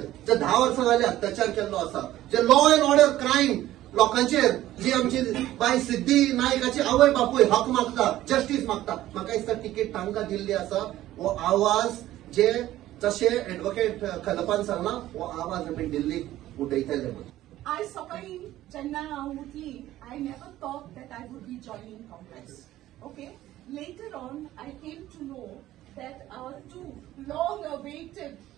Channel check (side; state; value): left; quieter; 14.5 dB